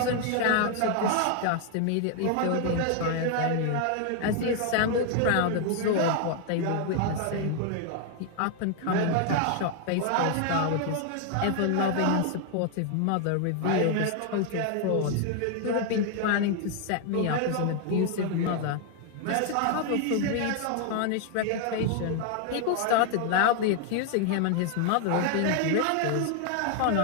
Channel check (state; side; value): different; both; correlation 0.00